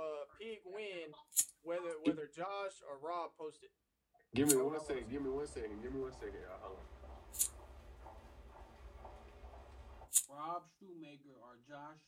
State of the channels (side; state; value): both; identical; correlation 1.00